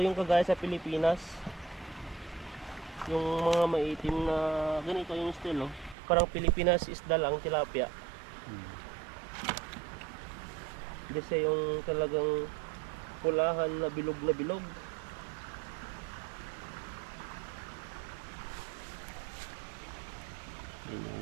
yung kagaya sa Pilipinas. Yung mga maitim na ganito yung style, oh. Parang Pilipinas isda lang, tilapia. Kasi yung talagang pulahan na bilog na bilog. Yan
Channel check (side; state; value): left; drops out; at 6.0 s